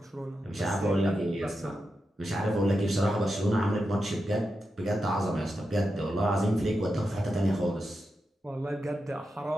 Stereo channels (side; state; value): both; normal; correlation 0.88